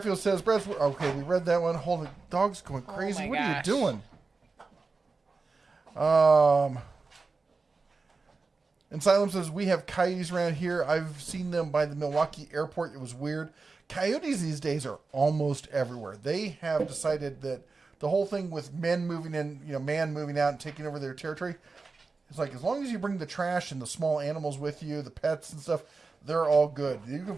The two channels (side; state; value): left; quieter; 4.1 dB